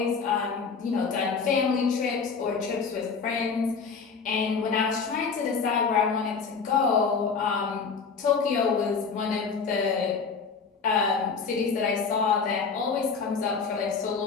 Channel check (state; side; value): quieter; right; 5.3 dB